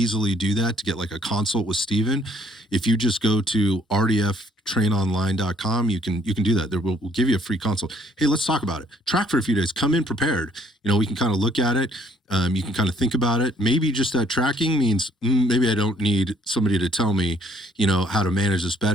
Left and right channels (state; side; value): normal; both; correlation 0.64